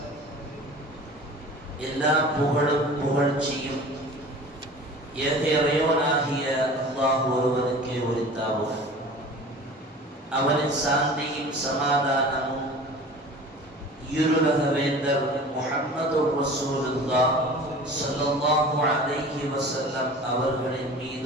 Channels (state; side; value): normal; both; correlation 0.40